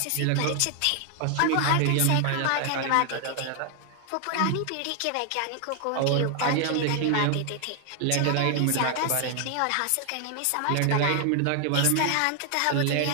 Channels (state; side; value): different; both; correlation 0.00